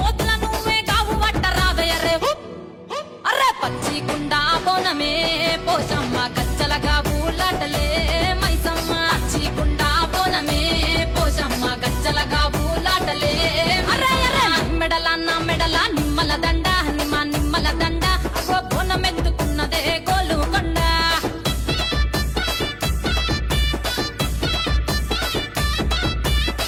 నువ్వే కావు వట్టరావయ్యరే అర్రే పచ్చి కుండా బోనమే పోషమ్మ గచ్చలగా ఊలాటలే మైసమ్మ పచ్చి కుండా బోనమే పోషమ్మ గచ్చలగా ఊలాటలే అర్రే అర్రే మెడల నా మెడల నిమ్మల దండ నిమ్మల దండ అగో బోనమెత్తుకున్నదే గోలుకొండ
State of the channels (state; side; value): identical; both; correlation 1.00